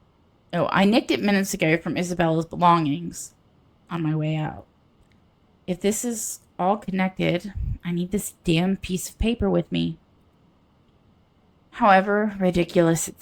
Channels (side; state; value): both; identical; correlation 1.00